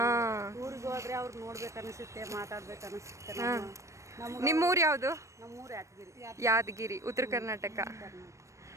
ನಿಮ್ಮೂರು ಯಾವುದು? ಯಾದಗಿರಿ, ಉತ್ತರ ಕರ್ನಾಟಕ.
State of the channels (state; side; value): late; left; 0.15 ms